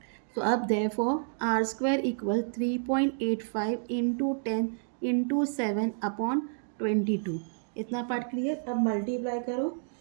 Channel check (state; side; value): silent; left; digital silence